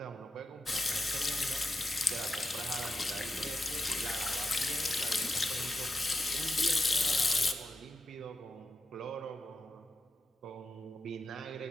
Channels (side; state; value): both; normal; correlation 0.86